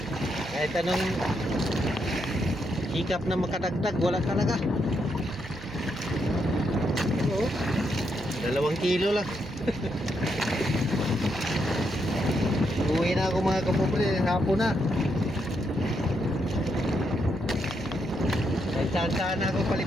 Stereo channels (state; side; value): noise; right; hum, 16 dB below the sound